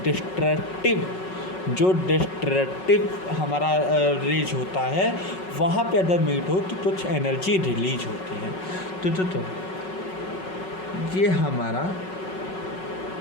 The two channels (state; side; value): late; right; 5.4 ms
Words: डिस्ट्रक्टिव हमारा रेज होता है, वहाँ पे अगर मीट हो तो कुछ एनर्जी रिलीज होती है। तो ये हमारा